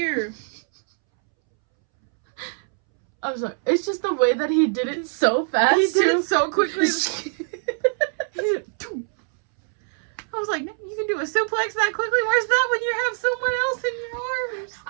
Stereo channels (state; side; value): silent; left; 63 dB below the other